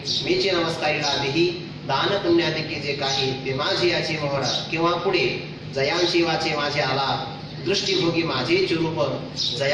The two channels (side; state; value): both; identical; correlation 1.00